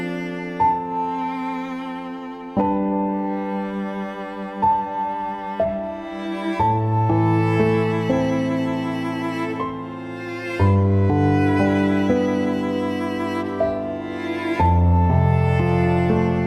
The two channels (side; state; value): both; identical; correlation 1.00